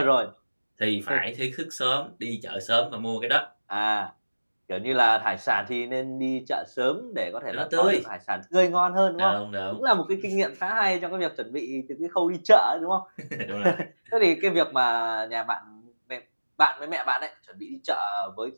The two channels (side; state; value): both; inverted; correlation -1.00